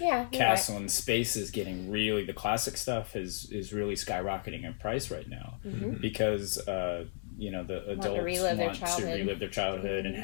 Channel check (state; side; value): silent; right; digital silence